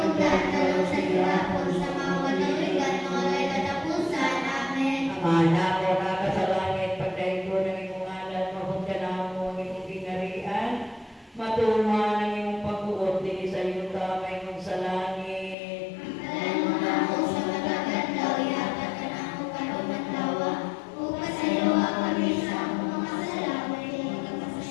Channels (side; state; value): right; drops out; at 15.6 s